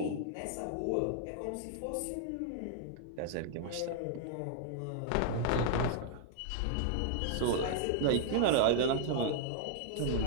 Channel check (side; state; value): both; different; correlation -0.01